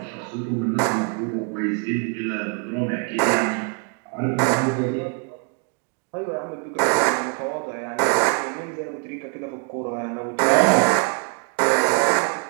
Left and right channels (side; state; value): left; quieter; 36.1 dB